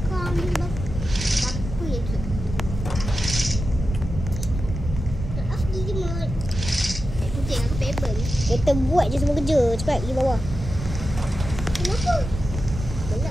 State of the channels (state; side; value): normal; both; correlation 0.91